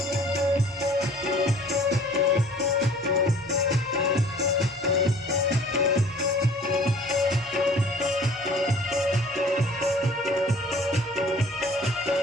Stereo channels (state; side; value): normal; both; correlation 0.50